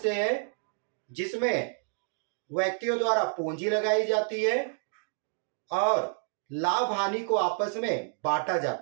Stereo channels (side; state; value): left; silent; 58 dB below the other